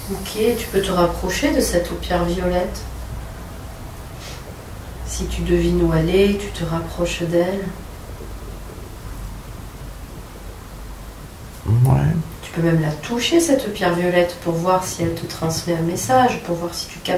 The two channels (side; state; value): both; identical; correlation 1.00